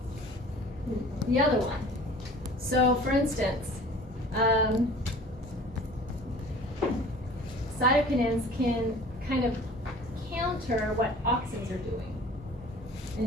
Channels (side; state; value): both; normal; correlation 0.46